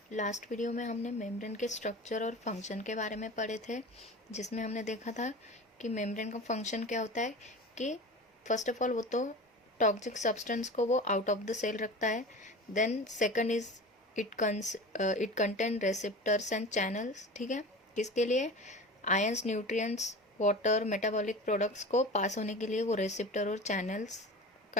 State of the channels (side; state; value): both; normal; correlation 0.34